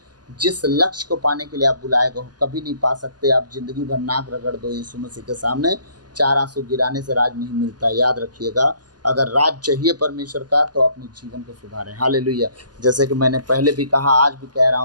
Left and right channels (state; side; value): late; left; 0.70 ms